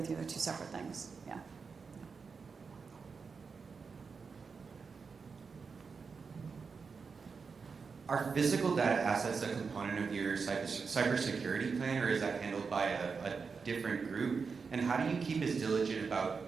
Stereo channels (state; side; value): quieter; left; 5.2 dB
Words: you, they're two separate things, yeah. Are physical data assets a component of your cybersecurity plan, or is that handled by a different group? And how do you keep as diligent